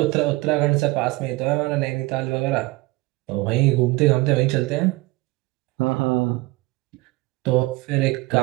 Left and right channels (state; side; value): quieter; left; 21.9 dB